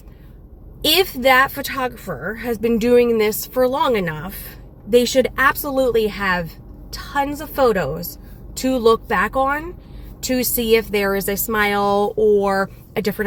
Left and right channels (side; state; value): both; identical; correlation 1.00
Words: if that photographer has been doing this for long enough, they should absolutely have tons of photos to look back on to see if there is a smile or a